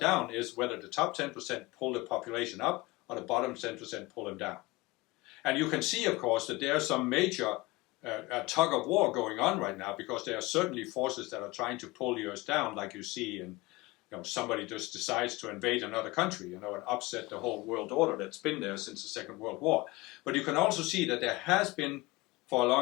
is whether the top 10% pull the population up or the bottom 10% pull them down. And you can see, of course, that there's some major tug of war going on right now, because there are certainly forces that are trying to pull the Earth down, like you see in, somebody just decides to invade another country, and upset the whole world order that's been there since the Second World War. But you can also see that there has been, for a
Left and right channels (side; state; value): right; quieter; 22.0 dB